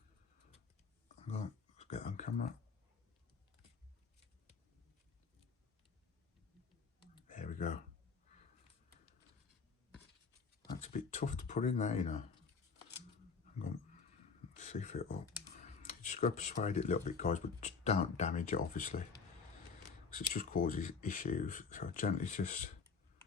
Let's get on camera. There we go. That's a bit tough to put in there, you know. Hang on. Let's see if it'll. You just got to persuade it a little bit, guys, but just don't damage it, obviously, because it just causes issues. So gently just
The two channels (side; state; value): right; quieter; 5.3 dB